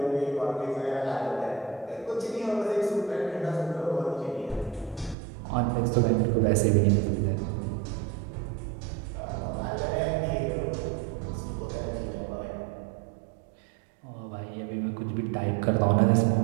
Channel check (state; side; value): drops out; left; at 5.2 s